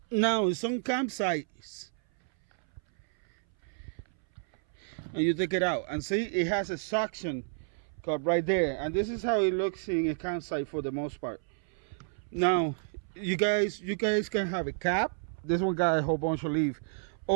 Now, in some campsites, and you take it out and see it has a suction cup right there, and this is how it looks in a campsite for the most part. Now you guys can have a cap. This one got a whole bunch of leaves,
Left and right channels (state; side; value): silent; left; 57 dB below the other